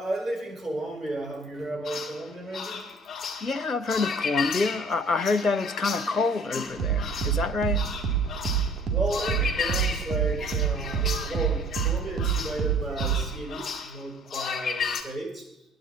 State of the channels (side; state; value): both; normal; correlation 0.53